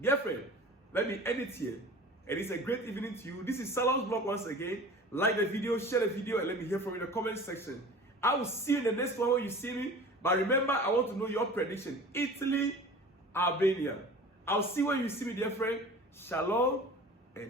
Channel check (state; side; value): normal; both; correlation 0.40